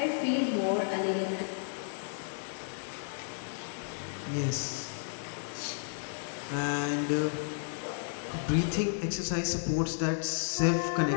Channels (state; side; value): silent; right; digital silence